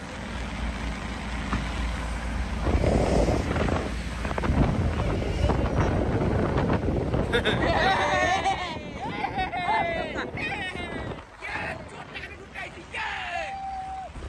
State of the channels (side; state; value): both; identical; correlation 1.00